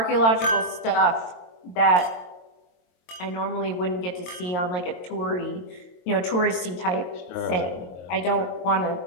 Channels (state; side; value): late; right; 22 ms